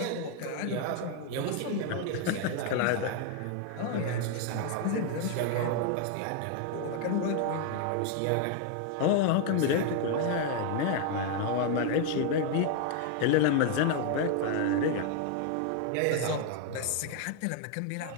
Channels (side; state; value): both; different; correlation 0.00